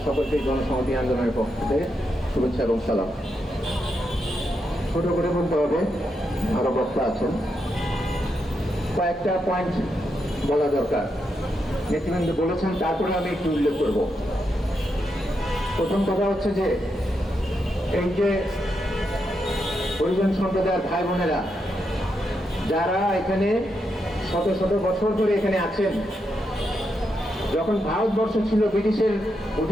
সকলকে জনসংহতি আন্দোলনের পক্ষ থেকে শুভেচ্ছা এবং সালাম। ছোট করে বলতে হবে, আরো বক্তা আছেন, কয়েকটা পয়েন্ট বলা দরকার। নেতৃবৃন্দ বলেছেন, তারপরে আমি একটু উল্লেখ করব। প্রথম কথা হচ্ছে যে এই যে হরিজন সম্প্রদায়ের ভাই বোনেরা যারা এখানে শত শত বছর ধরে এখানে আছেন, যখন ভারতবর্ষ ছিল ব্রিটিশের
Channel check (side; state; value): both; normal; correlation 0.83